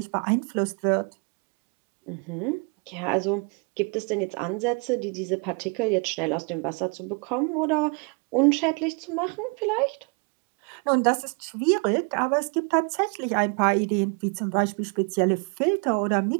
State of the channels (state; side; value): quieter; left; 34.6 dB